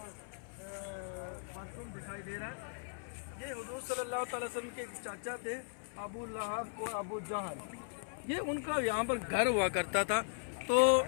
बाथरूम दिखाई दे रहा है। ये हुजूर सल्लल्लाहु अलैहि वसल्लम के चाचा थे, अबू लहब और अबू जहल। ये उनका यहाँ पर घर हुआ करता था, तो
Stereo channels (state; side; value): silent; right; 53 dB below the other